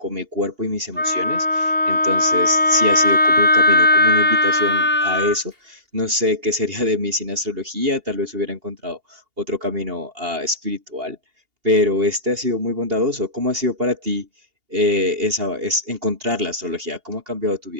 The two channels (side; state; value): left; late; 2.8 ms